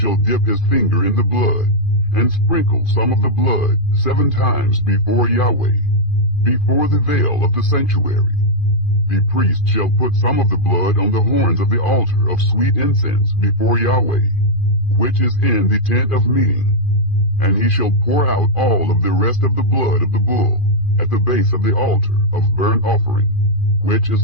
dip his finger in the blood, and sprinkle some of the blood 7 times before Yahweh, before the veil of the sanctuary. The priest shall put some of the blood on the horns of the altar of sweet incense before Yahweh, which is in the tent of meeting. And he shall pour out all of the rest of the blood of the bull at the base of the altar of burnt offering, which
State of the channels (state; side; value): late; right; 2.5 ms